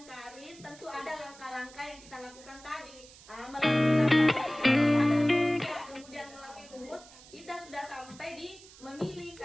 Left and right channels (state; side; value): noise; right; hiss, 21 dB below the sound